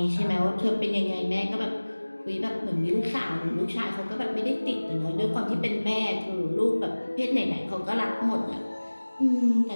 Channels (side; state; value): both; inverted; correlation -1.00